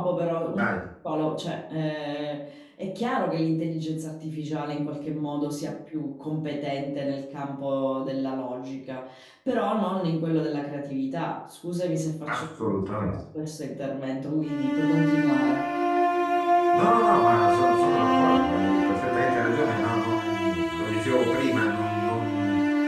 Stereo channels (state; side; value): identical; both; correlation 1.00